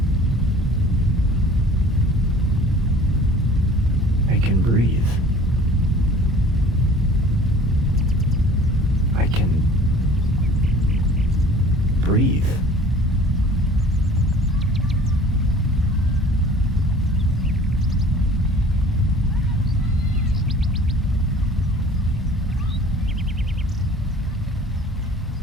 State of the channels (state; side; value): normal; both; correlation 0.48